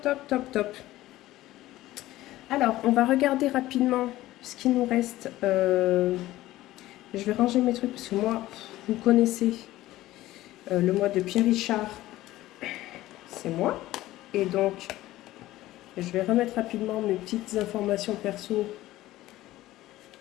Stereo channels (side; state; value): right; quieter; 16.1 dB